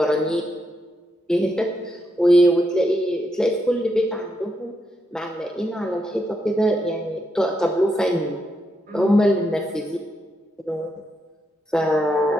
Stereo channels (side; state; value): both; normal; correlation 0.81